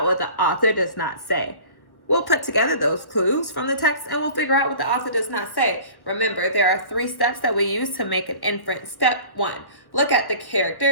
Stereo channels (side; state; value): right; late; 1.1 ms